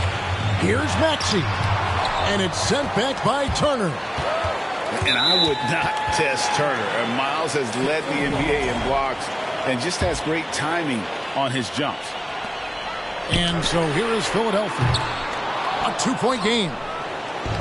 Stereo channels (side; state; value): both; identical; correlation 1.00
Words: Here's Maxey. And it's sent back by Turner. And I would not test Turner. And Miles has led the NBA in blocks and just has great timing on his jumps. And so here is Philadelphia. A 2-point game.